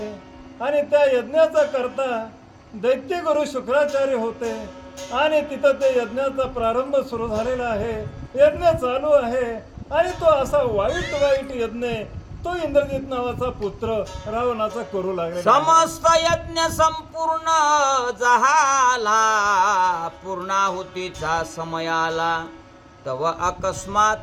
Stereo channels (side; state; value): both; identical; correlation 1.00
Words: आणि त्या यज्ञाचा करता दैत्य गुरु शुक्राचार्य होते. आणि तिथं ते यज्ञाचा प्रारंभ सुरू झालेला आहे. यज्ञ चालू आहे. आणि तो असा वाईट वाईट यज्ञ तो इंद्रजित नावाचा पुत्र रावणाचा करू लागला. समस्त यज्ञ संपूर्ण झाला, पूर्णाहुतीचा समय आला, तव